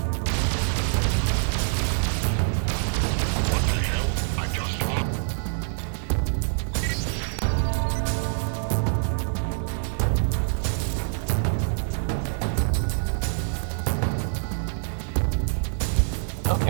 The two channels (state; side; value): silent; left; 60 dB below the other